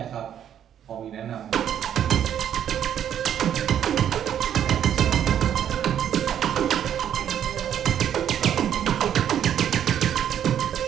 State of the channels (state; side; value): quieter; left; 9.8 dB